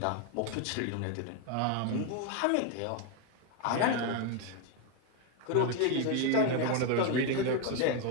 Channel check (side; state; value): both; different; correlation 0.01